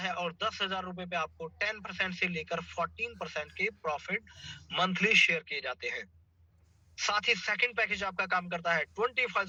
और 10,000 रुपए पे आपको 10% से लेकर 14% के प्रॉफिट मंथली शेयर किए जाते हैं। साथ ही सेकंड पैकेज आपका काम करता है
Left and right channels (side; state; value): both; identical; correlation 1.00